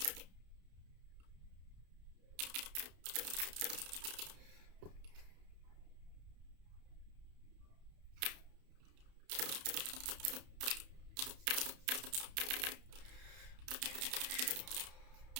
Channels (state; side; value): late; left; 31 ms